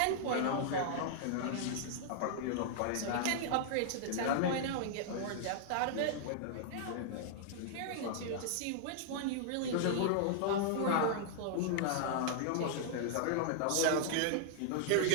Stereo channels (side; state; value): both; different; correlation -0.01